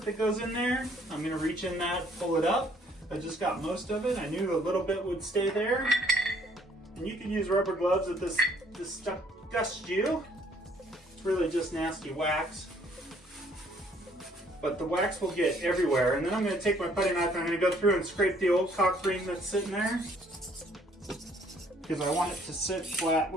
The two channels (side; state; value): both; normal; correlation 0.62